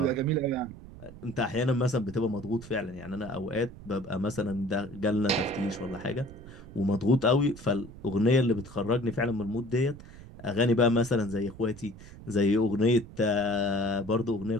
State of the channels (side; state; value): right; noise; rumble, 17 dB below the sound